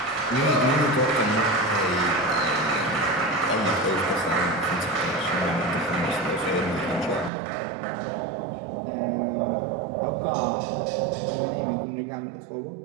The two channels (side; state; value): left; drops out; at 7.3 s